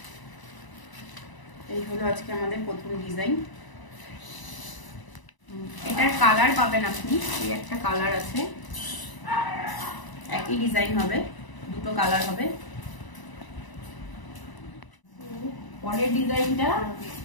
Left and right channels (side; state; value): right; late; 1.0 ms